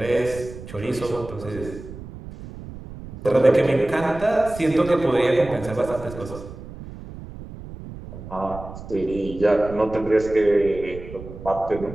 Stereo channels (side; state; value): right; noise; rumble, 13 dB below the sound